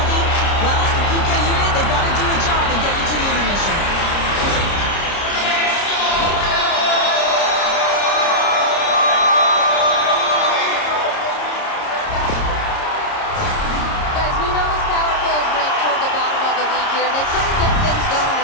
Well, the PK unit, they've got to do a job and get you to the intermission. Guys, we know this power play is ranked toward the bottom of the league here, and they couldn't get things going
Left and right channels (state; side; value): late; right; 30 ms